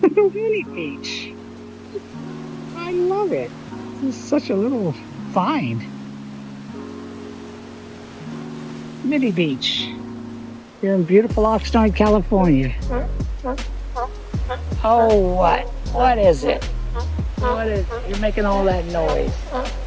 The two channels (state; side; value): identical; both; correlation 1.00